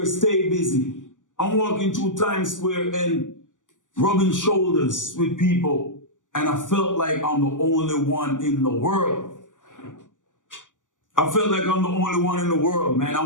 stay busy. I'm walking through Times Square and rubbing shoulders with people, and I felt like I'm the only one in the world. I felt like I'm the only one in the world, man.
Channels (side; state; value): right; late; 0.87 ms